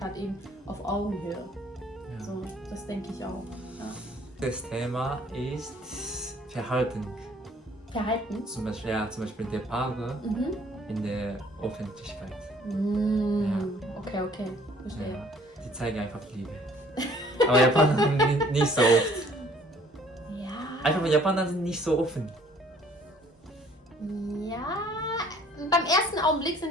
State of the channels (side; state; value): both; normal; correlation 0.58